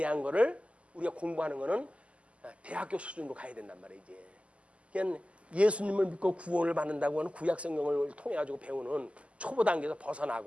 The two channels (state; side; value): late; left; 0.059 ms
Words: 거를 우리가 공부하는 거는 대학교 수준으로 가야 된단 말이에요. 이제 그냥 예수님을 믿고 구원을 받는다고 하는 구약 성경을 통해 가지고 배우는 초보 단계에서